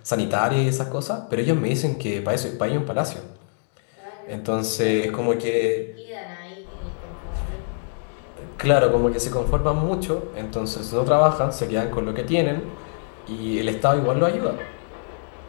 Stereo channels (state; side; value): silent; right; digital silence